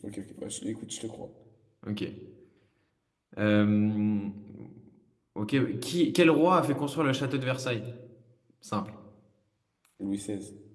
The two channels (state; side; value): identical; both; correlation 1.00